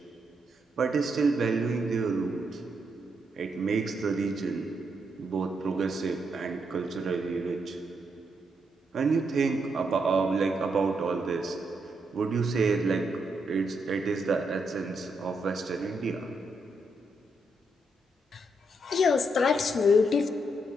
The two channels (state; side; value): normal; both; correlation 0.79